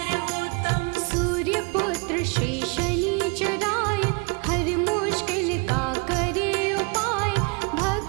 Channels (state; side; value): quieter; left; 32.8 dB